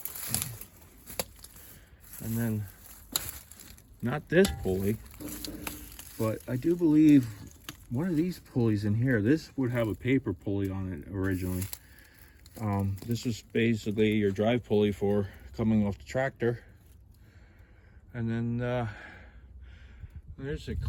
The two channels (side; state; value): both; identical; correlation 1.00